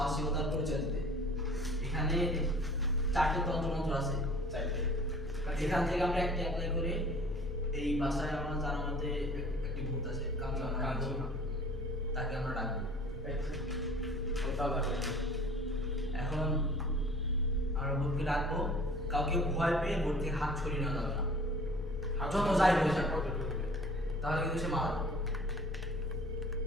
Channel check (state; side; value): normal; both; correlation 0.49